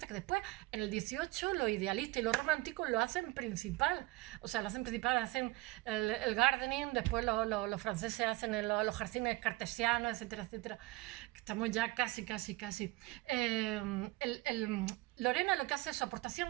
que después, en el XVIII, los idealistas y los románticos lo hacen principal. O sea, lo hacen principal, hacen el gardening, después los franceses hacen los jardines cartesianos, etcétera, etcétera. Estamos ya casi. Lorena lo que hace es su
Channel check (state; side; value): quieter; left; 20.4 dB